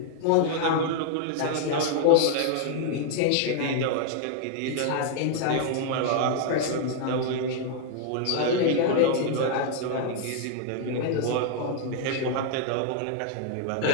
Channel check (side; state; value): both; different; correlation 0.00